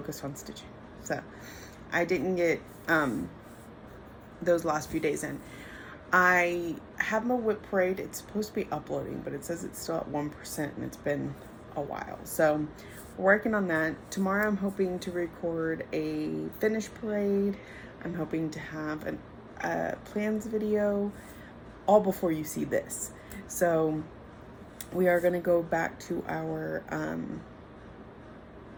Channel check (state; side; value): identical; both; correlation 1.00